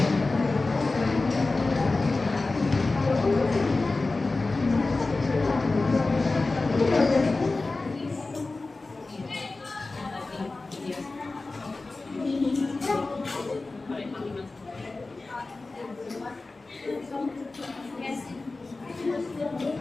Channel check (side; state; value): right; quieter; 3.4 dB